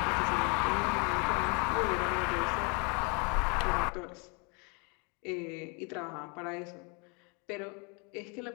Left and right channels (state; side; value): quieter; right; 33.0 dB